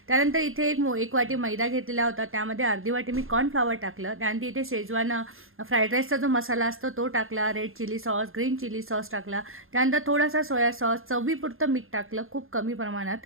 त्यानंतर इथे एक वाटी मैदा घेतलेला होता. त्यामध्ये अर्धी वाटी मी कॉर्नफ्लॉवर टाकलं. त्यानंतर इथे शेजवान फ्राईड राईसचा जो मसाला असतो तो टाकला. Red chilli sauce, green chilli sauce टाकला. त्यानंतर थोडासा सोया सॉस, चवीपुरतं मीठ टाकलं खूप कमी प्रमाणात.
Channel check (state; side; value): late; left; 0.60 ms